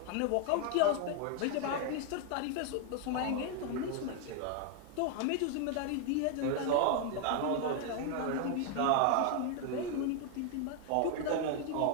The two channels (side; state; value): both; different; correlation 0.00